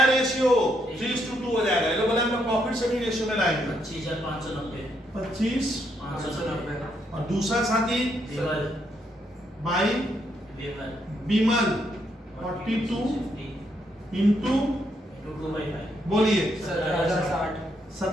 रेशियो 3:2 हो जाएगा। ये लोग बोले हम प्रॉफिट शेयरिंग रेशियो में लाएंगे 25,590। 25,590। और दूसरा साथी बाई विमल 42 इंटू बोलिए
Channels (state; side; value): normal; both; correlation 0.76